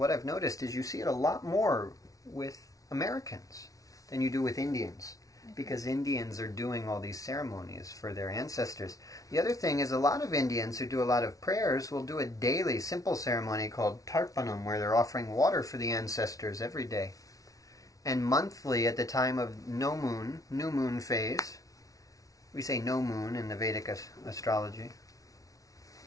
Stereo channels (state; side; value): late; right; 0.17 ms